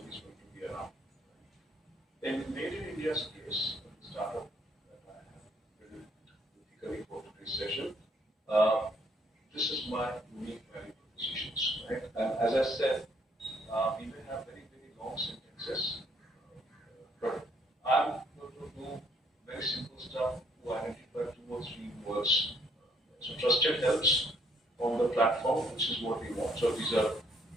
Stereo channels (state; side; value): normal; both; correlation 0.67